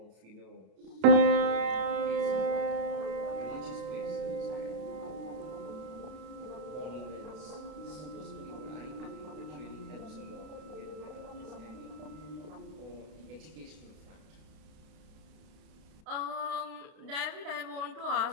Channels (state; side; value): late; left; 32 ms